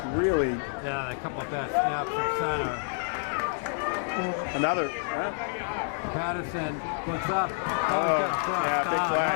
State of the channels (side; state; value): right; silent; digital silence